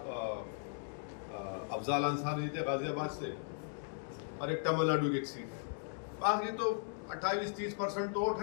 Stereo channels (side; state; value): right; silent; digital silence